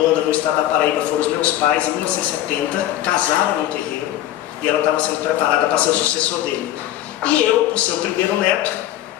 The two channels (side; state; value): right; quieter; 13.2 dB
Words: no estado da Paraíba foram os meus pais, em 1970, casaram no terreiro, e ela estava sendo preparada para ser o sucessor dele. E eu, por ser o primeiro neto,